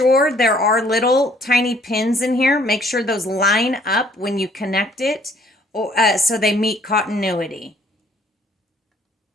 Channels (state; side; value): normal; both; correlation 0.61